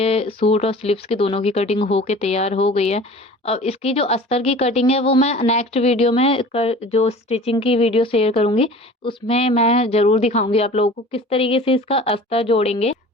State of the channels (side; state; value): both; normal; correlation 0.42